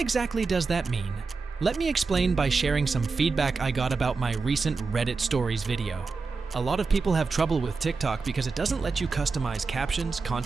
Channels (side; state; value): left; quieter; 4.4 dB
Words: does that mean? Let me explain by sharing some feedback I got about my recent Reddit stories video. A lot of people have trouble with TikTok because it doesn't let you customize captions,